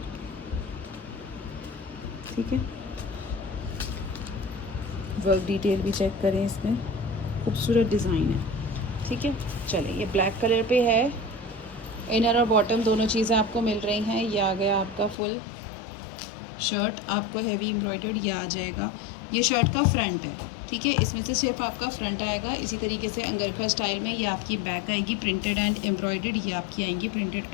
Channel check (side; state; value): right; drops out; at 15.2 s